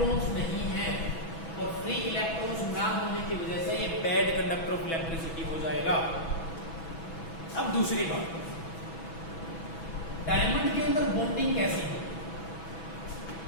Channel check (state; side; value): late; right; 6.1 ms